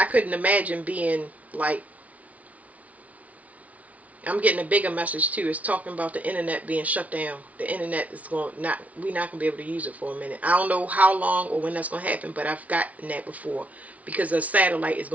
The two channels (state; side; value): late; left; 0.069 ms